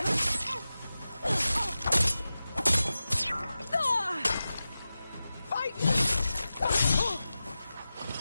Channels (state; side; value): inverted; both; correlation -0.94